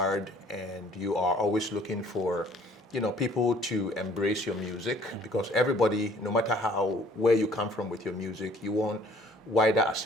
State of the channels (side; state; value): both; normal; correlation 0.57